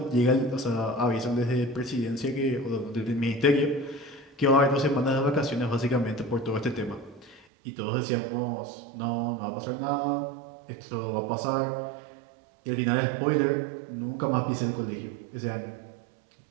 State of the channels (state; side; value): drops out; left; at 7.5 s